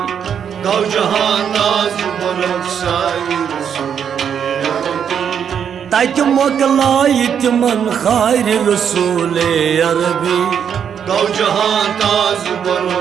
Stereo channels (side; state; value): left; quieter; 8.0 dB